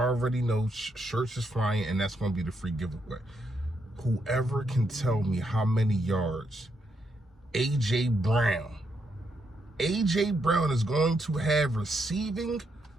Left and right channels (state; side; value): normal; both; correlation 0.79